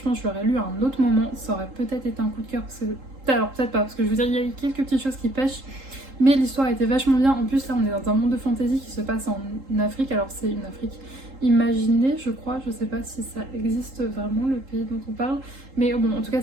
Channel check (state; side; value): late; left; 3.8 ms